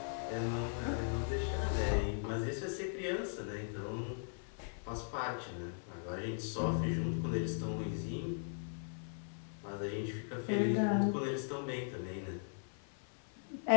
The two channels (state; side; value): silent; right; 52 dB below the other